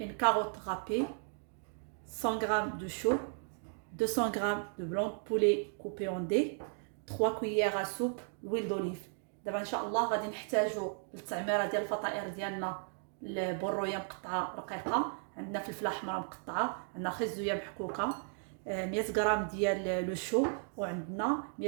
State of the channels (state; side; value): silent; left; 54 dB below the other